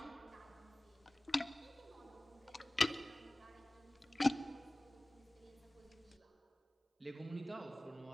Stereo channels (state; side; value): normal; both; correlation 0.98